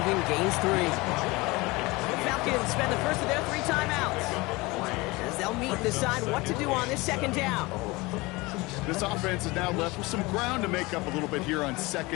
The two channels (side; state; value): right; quieter; 23.0 dB